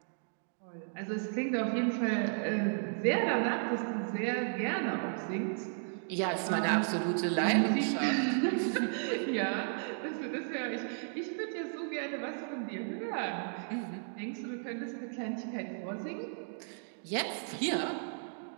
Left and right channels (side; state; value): left; silent; digital silence